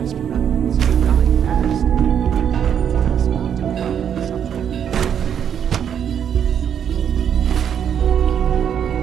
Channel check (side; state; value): left; quieter; 8.6 dB